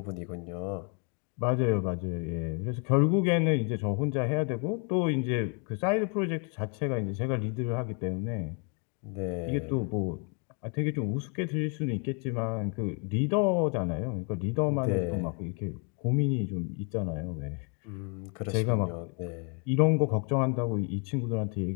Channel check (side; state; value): right; quieter; 37.7 dB